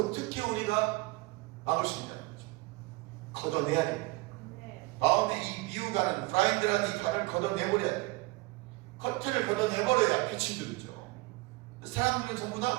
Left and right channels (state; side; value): quieter; left; 22.6 dB